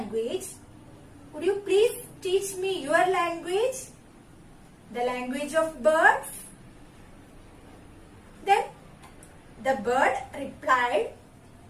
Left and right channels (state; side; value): identical; both; correlation 1.00